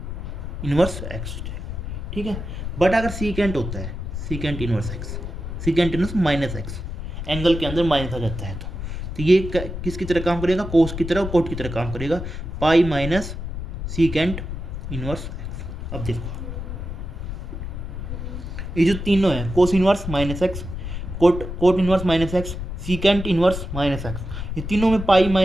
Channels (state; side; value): noise; left; rumble, 6 dB below the sound